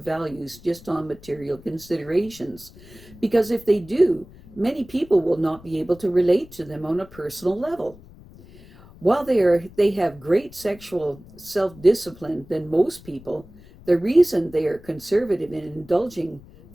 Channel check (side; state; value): left; noise; rumble, 21 dB below the sound